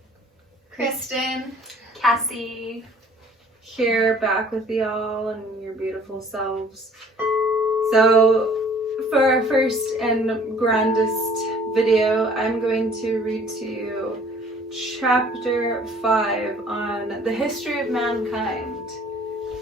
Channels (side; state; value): both; normal; correlation 0.54